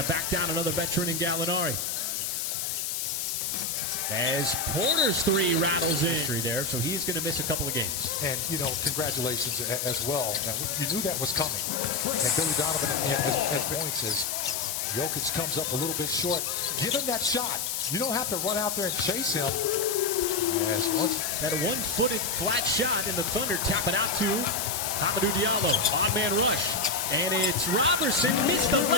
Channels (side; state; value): left; noise; hiss, 2 dB below the sound